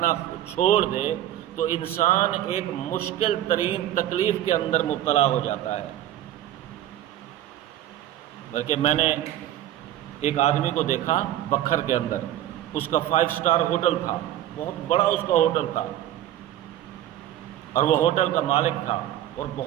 چھوڑ دے، تو انسان ایک مشکل ترین تکلیف کے اندر مبتلا ہو جاتا ہے۔ بلکہ میں نے ایک آدمی کو دیکھا بکھر کے اندر، اس کا 5 اسٹار ہوٹل تھا، بہت بڑا اس کا ہوٹل تھا، اور وہ ہوٹل کا مالک تھا اور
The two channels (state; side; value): quieter; left; 12.6 dB